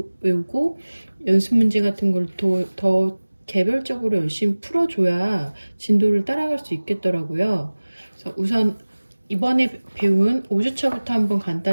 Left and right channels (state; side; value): inverted; both; correlation -1.00